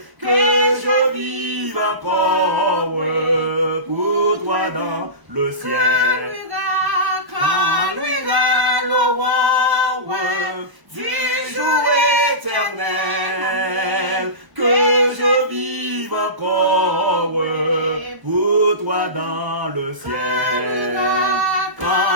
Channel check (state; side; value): late; left; 1.0 ms